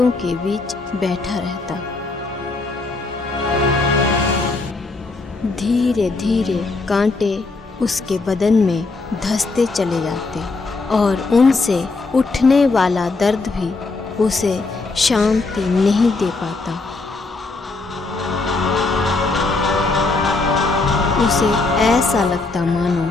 के बीच बैठा रहता। धीरे धीरे कांटे उसके बदन में धंसते चले जाते और उनसे उठने वाला दर्द भी उसे शांति नहीं दे पाता। उसे ऐसा लगता मानो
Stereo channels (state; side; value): quieter; right; 3.6 dB